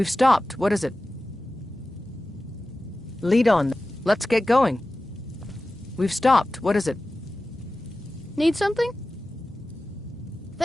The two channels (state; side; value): normal; both; correlation 0.95